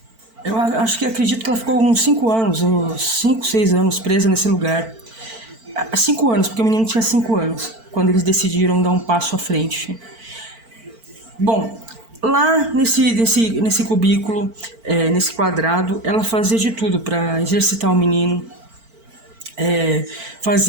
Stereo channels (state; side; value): late; left; 4.5 ms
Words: eu acredito que ela ficou uns 5 anos, uns 5, 6 anos presa nesse lugar. 5 anos, porque o menino tinha 5 anos, quando eles decidiram dar um passo à frente. Bom, lá nesse cubículo, nesse quadrado, ela fazia de tudo para exercitar o menino.